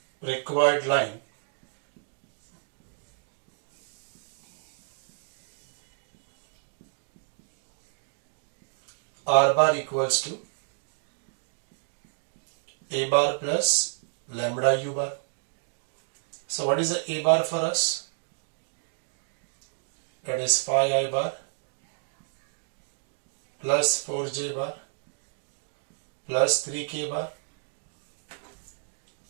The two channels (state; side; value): silent; left; digital silence